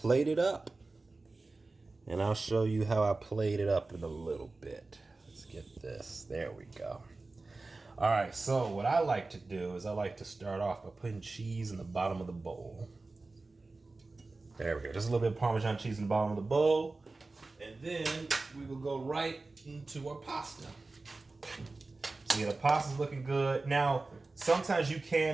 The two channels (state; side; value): quieter; left; 3.4 dB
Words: it up, and I'll show you how I plate it up in a little bit. Let's get this. There we go. All right. So what I like to do is I like to start off by putting cheese in the bottom of the bowl. There we go. Just a little bit of Parmesan cheese in the bottom of the bowl. then we will go right into our pasta. So yeah, the pasta's looking good. Now, sometimes you